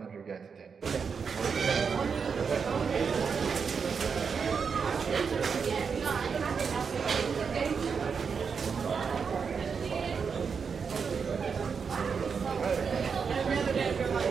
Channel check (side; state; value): left; quieter; 5.9 dB